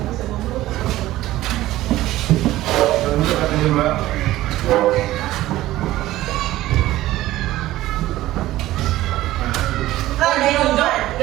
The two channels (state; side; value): quieter; left; 15.8 dB